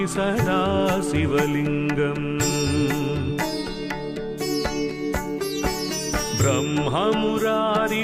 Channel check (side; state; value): both; identical; correlation 1.00